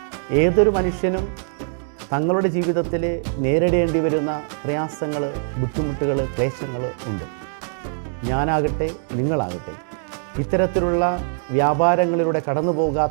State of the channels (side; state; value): left; silent; digital silence